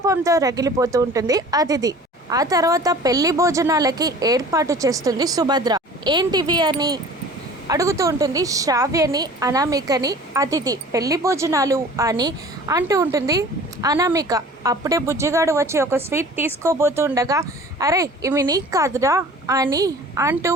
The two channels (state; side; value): normal; both; correlation 0.44